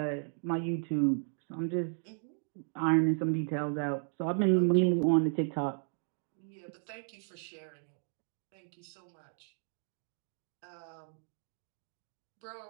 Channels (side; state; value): left; silent; 55 dB below the other